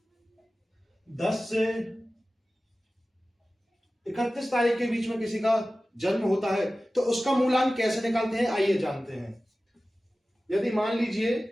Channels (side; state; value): both; normal; correlation 0.96